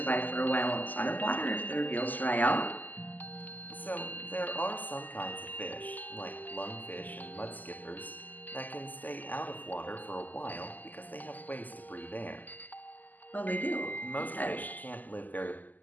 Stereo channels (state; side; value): late; right; 0.083 ms